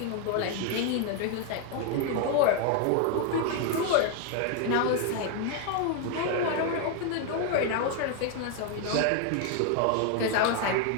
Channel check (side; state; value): both; different; correlation 0.00